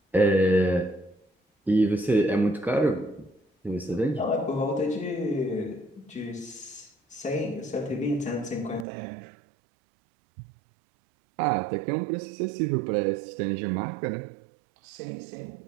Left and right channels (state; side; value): drops out; left; at 8.8 s